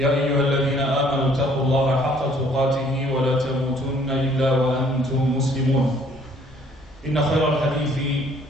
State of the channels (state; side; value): normal; both; correlation 0.60